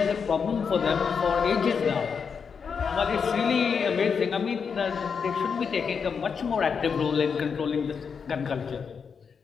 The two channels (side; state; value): right; quieter; 6.1 dB